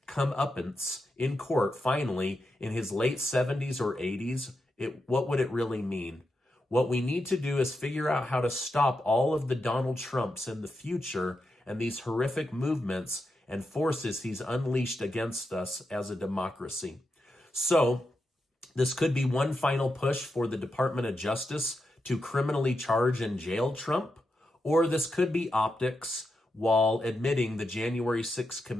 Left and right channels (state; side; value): normal; both; correlation 0.87